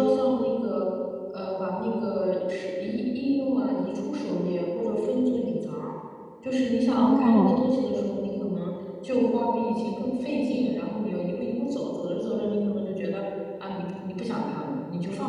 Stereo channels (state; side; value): identical; both; correlation 1.00